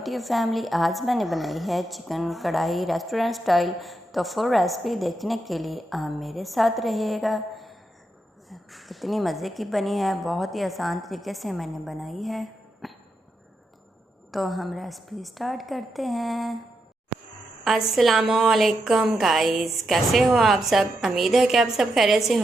family. आज मैंने बनाई है चिकन कढ़ाई रेस्टोरेंट स्टाइल। तो फुल रेसिपी देखने के लिए आप मेरे साथ रहिएगा। कितनी मज़े की बनी है, बहुत ही आसान तरीके से मैंने बनाई है। तो हम रेसिपी स्टार्ट करते हैं। अस्सलामुअलैकुम गाइस, कैसे हो आप सब? उम्मीद है कि आप सब खैरियत से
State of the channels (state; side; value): normal; both; correlation 0.84